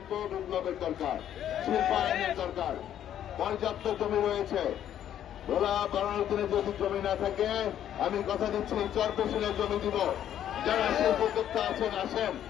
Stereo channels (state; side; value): quieter; right; 10.6 dB